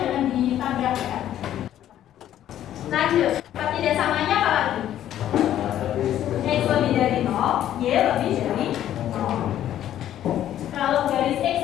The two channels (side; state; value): right; quieter; 11.7 dB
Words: jangan ditambah ya. Lanjut, pertidaksamanya apa lagi? X lebih dari 0, Y lebih dari 0. Kalau garis X